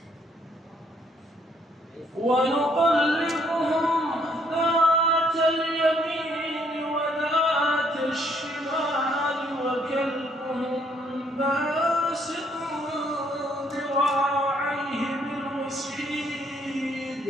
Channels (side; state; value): both; normal; correlation 0.68